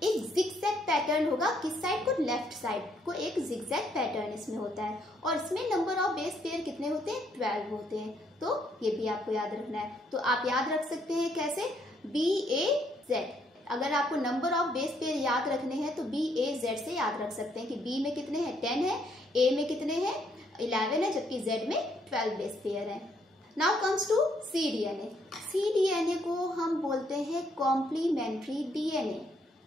एक जिगजैग पैटर्न होगा। किस साइड को? लेफ्ट साइड को एक जिगजैग पैटर्न इसमें होता है। और इसमें नंबर ऑफ बेस पेयर कितने होते हैं? 12 होते हैं। तो ये भी आपको याद रखना है। तो आप याद रख सकते हैं कैसे? बी ए जेड। अगर आपको नंबर ऑफ बेस पेयर याद रखने हैं तो बी ए जेड से याद रख सकते हैं कि बी में कितने हैं? 10 है, ए में कितने हैं? 11 है, जबकि जेड में 12 बेस पेयर है। Now comes to C DNA. C DNA को हम बोलते हैं कॉम्प्लीमेंट्री डीएनए।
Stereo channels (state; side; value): normal; both; correlation 0.70